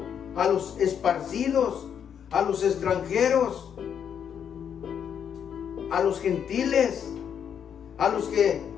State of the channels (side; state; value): right; quieter; 8.2 dB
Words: a los esparcidos, a los extranjeros, a los gentiles, a los que